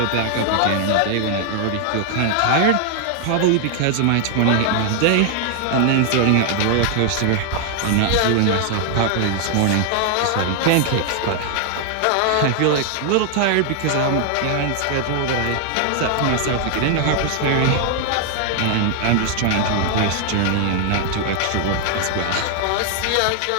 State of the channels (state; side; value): different; both; correlation 0.00